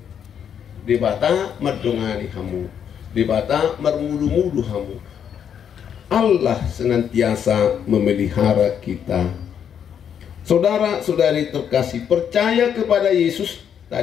di bata madongani hamu di bata marmudu-mudu hamu. Allah senantiasa memelihara kita. Saudara-saudari terkasih, percaya kepada Yesus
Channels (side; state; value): right; quieter; 8.4 dB